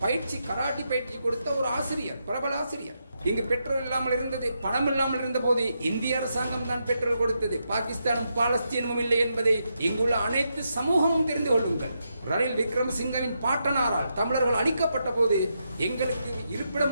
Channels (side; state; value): both; inverted; correlation -0.83